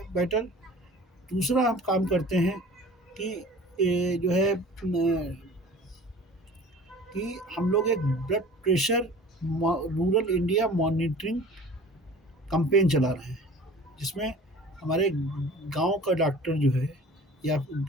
मैटर। दूसरा हम काम करते हैं कि जो है कि हम लोग एक blood pressure rural India monitoring campaign चला रहे हैं, जिसमें हमारे गांव का डॉक्टर जो है या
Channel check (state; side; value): normal; both; correlation 0.44